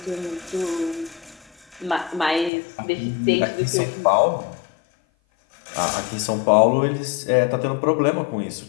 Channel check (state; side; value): drops out; right; at 2.5 s